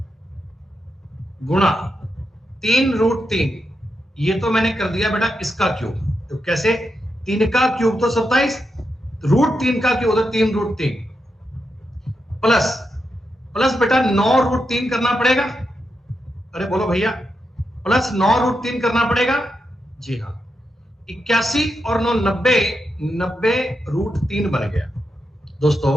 गुणा 3√3, ये तो मैंने कर दिया बेटा इसका क्यूब। तो कैसे, 3 का क्यूब तो 27, √3 का क्यूब तो 3√3 प्लस प्लस बेटा 9√3 करना पड़ेगा। अरे बोलो भैया, प्लस 9√3 करना पड़ेगा। जी हाँ, 81 और 9 90, 90√3 बन गया। दोस्तों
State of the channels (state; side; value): normal; both; correlation 0.85